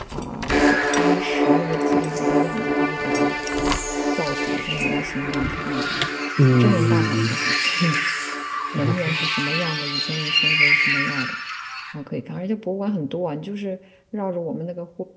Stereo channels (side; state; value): both; identical; correlation 1.00